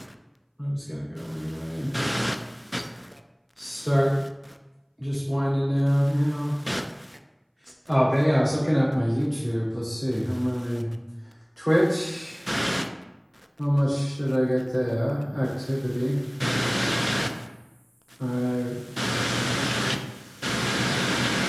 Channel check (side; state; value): both; identical; correlation 1.00